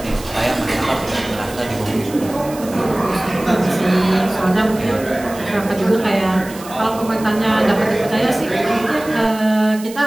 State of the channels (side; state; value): right; noise; hiss, 17 dB below the sound